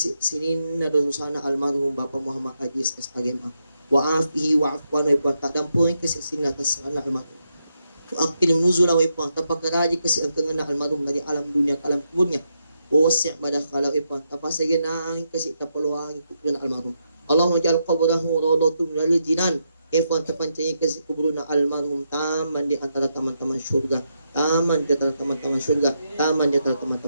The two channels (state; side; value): inverted; both; correlation -0.82